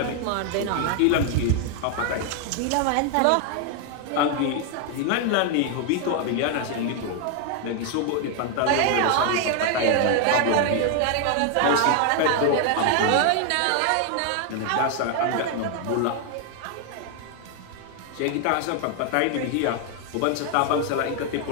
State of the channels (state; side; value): different; both; correlation 0.00